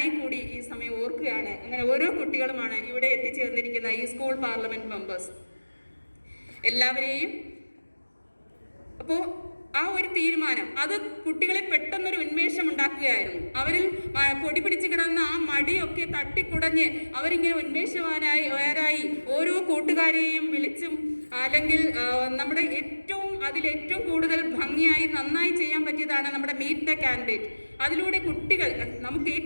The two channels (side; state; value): both; inverted; correlation -1.00